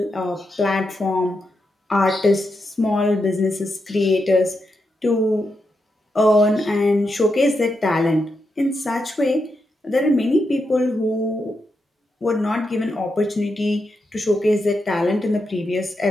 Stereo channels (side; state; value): both; normal; correlation 0.85